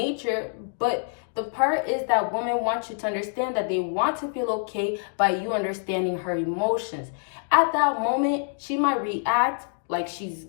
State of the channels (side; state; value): right; silent; 61 dB below the other